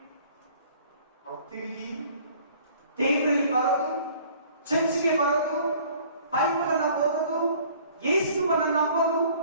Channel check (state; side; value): inverted; both; correlation -0.53